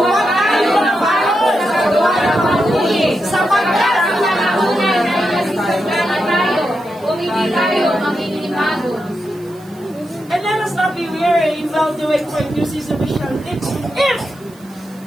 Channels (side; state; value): right; noise; hiss, 27 dB below the sound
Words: tayo magpahon sa gawa ng mabuti. Sapagkat ang nakaunay na ilasisagana tayo. Kung hindi tayo makikipagod. And let us not be weary in well-doing, for in due season we shall live.